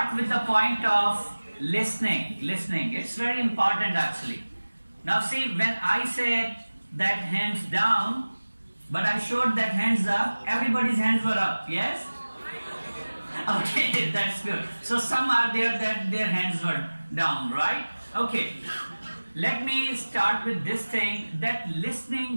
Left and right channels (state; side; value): inverted; both; correlation -1.00